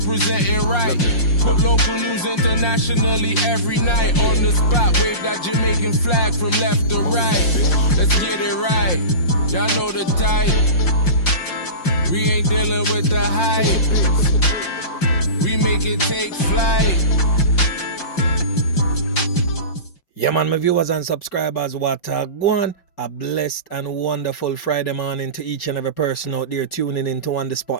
right. Put local news internationally every night. On the spot, wave that Jamaican flag from left to right. Let's get it right, y'all know the type. We ain't dealing with the hype. We make it take flight. Yeah man, my viewers and subscribers, what go on? A blessed and wonderful Friday morning to each and every person out there tuning into On The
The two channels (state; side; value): late; right; 5.6 ms